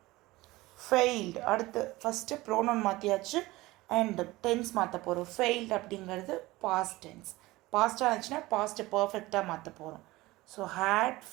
ஃபெயில்டு. அடுத்து ஃபஸ்ட்டு ப்ரோனவுன் மாற்றியாச்சு அண்ட் டென்ஸ் மாற்ற போகிறோம். ஃபெயில்டு அப்படிங்கிறது பாஸ்ட் டென்ஸ். பாஸ்ட்டாக இருந்துச்சுன்னா பாஸ்ட்டு பர்ஃபெக்டாக மாற்ற போகிறோம். So had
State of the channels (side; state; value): left; quieter; 19.4 dB